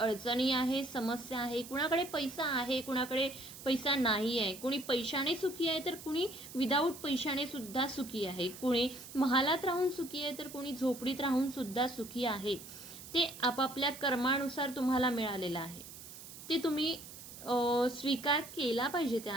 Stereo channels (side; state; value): right; noise; hiss, 14 dB below the sound